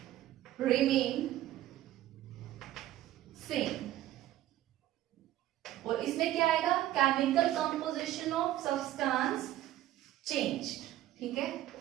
remain same, और इसमें क्या आएगा, chemical composition of substance change, ठीक है,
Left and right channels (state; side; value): quieter; left; 14.0 dB